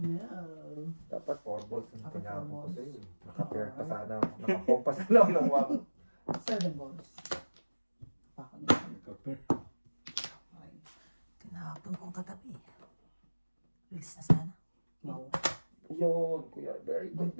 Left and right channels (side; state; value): both; inverted; correlation -1.00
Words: balls ang Naka 4 tinapon ko balls. sa'yo. Naka-pair pa sana ako. Naka-compass na lang ng 1. 7 balls. Pakon niya. Kapir. Okay. Tinapon kong katabi. Bilis na sana. Wow. Yun, kuya. Very good,